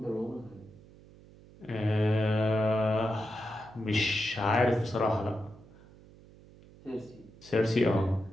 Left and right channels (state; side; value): noise; right; hum, 23 dB below the sound